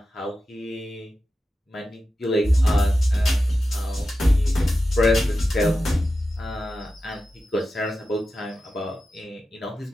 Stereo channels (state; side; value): normal; both; correlation 0.92